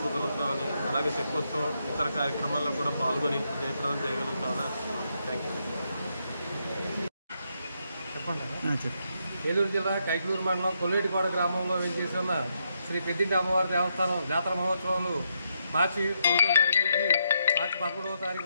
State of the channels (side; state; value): both; inverted; correlation -0.79